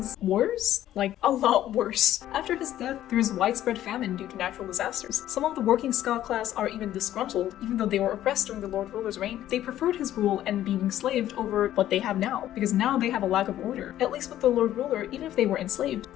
worse, like a lot worse. After his death, there is widespread famine due to natural disasters. Some of the working Scot class are even disgruntled, even though they were oppressed during the Lord Ruler's reign. They preferred his rule and being enslaved over what they have now, because now they have a lack of order. At least with the Lord Ruler, even if they were enslaved,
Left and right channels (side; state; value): right; quieter; 12.7 dB